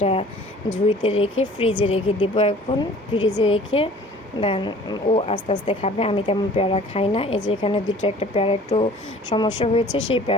ঝুড়িতে রেখে ফ্রিজে রেখে দেবো, এখন ফ্রিজে রেখে দেন ও আস্তে আস্তে খাবে। আমি তেমন পেয়ারা খাই না। এই যে এখানে একটা পেয়ারা একটু সমস্যা হয়েছে, সেই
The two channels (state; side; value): normal; both; correlation 0.49